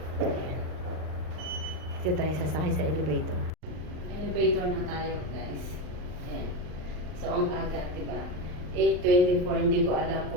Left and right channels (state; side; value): late; left; 39 ms